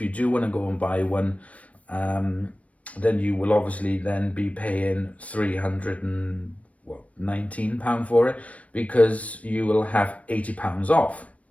you do want to go and buy one, then you will obviously then be paying £319 for it because you will have £80 off.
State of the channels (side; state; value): right; late; 0.066 ms